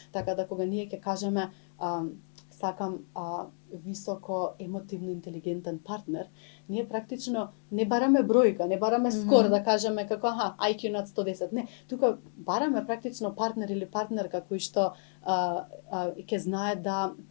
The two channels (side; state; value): right; silent; 57 dB below the other